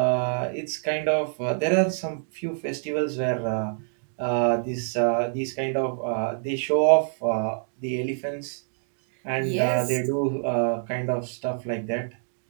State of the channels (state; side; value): silent; left; 61 dB below the other